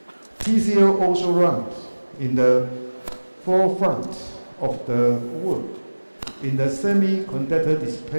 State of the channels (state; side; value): inverted; both; correlation -1.00